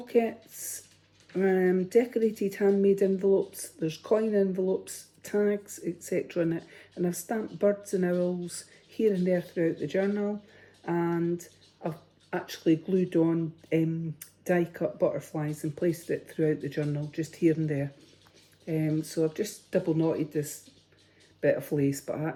decorated handmade envelopes. There's coin envelopes, tags, etc. in it. And I've stamped birds and owls here and there throughout the journal. And I've actually glued on die-cut butterflies and placed it throughout the journal, just here and there. So I've just double knotted this bit of lace, but I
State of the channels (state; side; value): identical; both; correlation 1.00